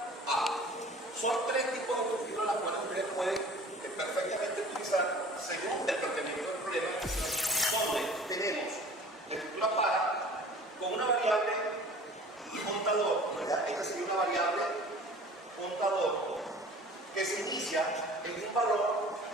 a. Son tres tipos de estructuras las cuales ustedes pueden perfectamente utilizar según el planteamiento del problema, donde tenemos la estructura para con una variable contador, ¿verdad? Esta sería una variable contador que se inicia en un valor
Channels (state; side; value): normal; both; correlation 0.46